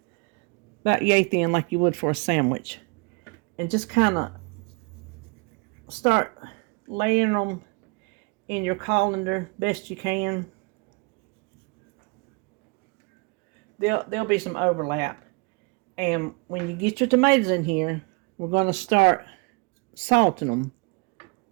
about yay thin like you would for a sandwich. And just kind of start laying them in your colander best you can. There'll be some overlap. And when you get your tomatoes in here, we're going to start salting them.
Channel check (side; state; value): left; quieter; 30.1 dB